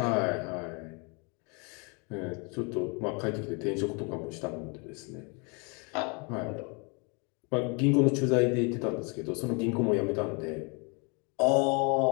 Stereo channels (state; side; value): quieter; right; 32.8 dB